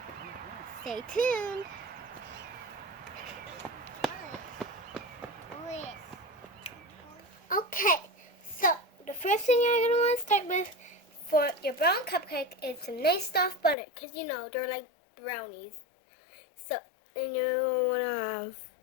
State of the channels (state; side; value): drops out; right; at 13.8 s